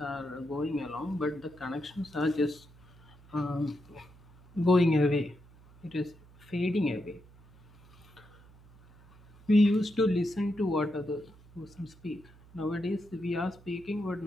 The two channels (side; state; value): right; noise; hum, 24 dB below the sound